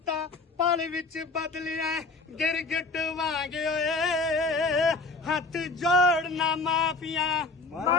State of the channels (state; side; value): quieter; right; 3.7 dB